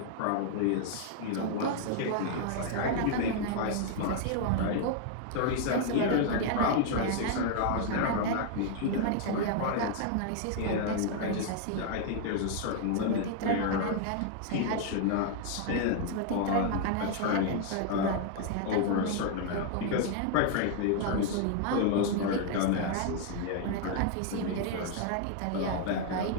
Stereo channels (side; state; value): both; different; correlation 0.00